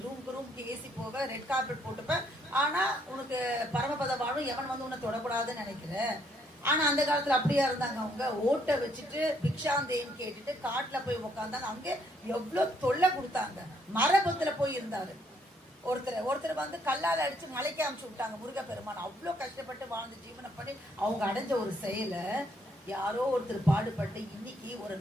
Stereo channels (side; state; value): both; normal; correlation 0.70